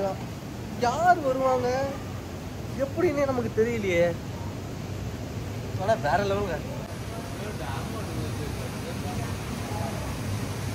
யார் வருவாங்க எப்படின்னே நமக்கு தெரியலையே. ஆனால் வேற லெவலுங்க.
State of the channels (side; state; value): both; identical; correlation 1.00